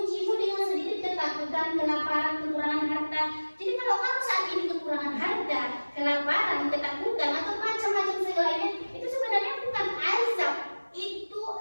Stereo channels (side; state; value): both; inverted; correlation -1.00